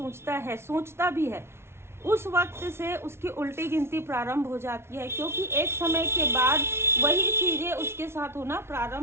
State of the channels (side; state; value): left; late; 0.12 ms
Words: है, सोचता भी है, उस वक्त से उसकी उल्टी गिनती प्रारंभ हो जाती है, क्योंकि एक समय के बाद वही चीज़ें उसके साथ होना